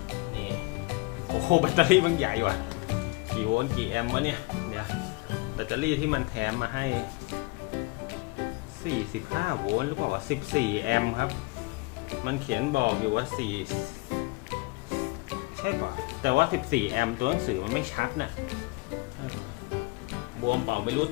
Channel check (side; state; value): right; quieter; 25.1 dB